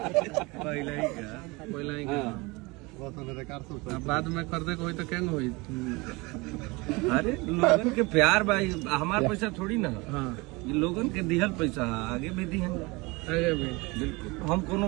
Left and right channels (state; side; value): quieter; left; 25.0 dB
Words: पहले ही बाद में खरीदे को होई तो केंग होई? अरे लोगन के प्यार भाई, हमार पैसा थोड़ी ना। हाँ, ये लोगन के दिहल पैसा आगे भी दिहन। आगे भी बिल्कुल, हम कोनो